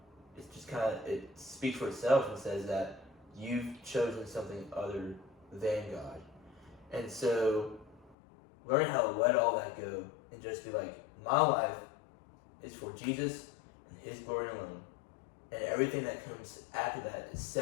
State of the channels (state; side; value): drops out; right; at 8.2 s